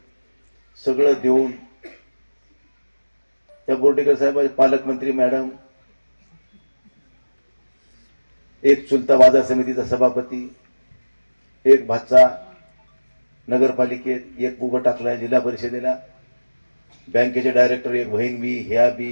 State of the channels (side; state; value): both; inverted; correlation -1.00